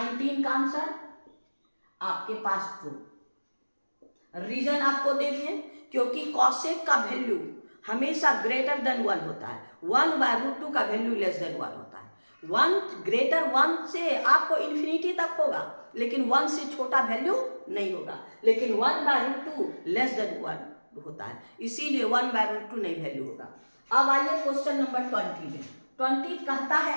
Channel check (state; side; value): inverted; both; correlation -1.00